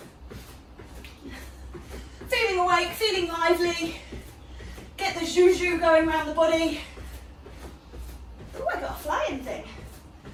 feeling awake, feeling lively. Get the zhu-zhu going around the body. Oh, I got a flying thing.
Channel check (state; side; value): identical; both; correlation 1.00